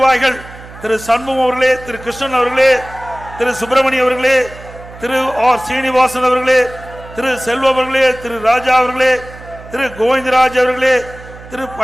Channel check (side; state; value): right; noise; hum, 18 dB below the sound